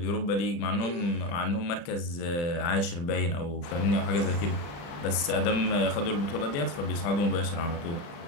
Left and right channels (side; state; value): right; late; 35 ms